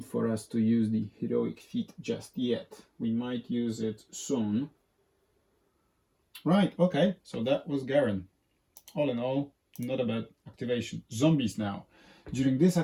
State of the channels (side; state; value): both; identical; correlation 1.00